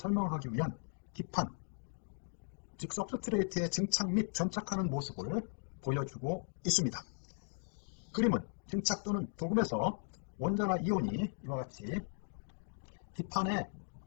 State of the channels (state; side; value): silent; right; digital silence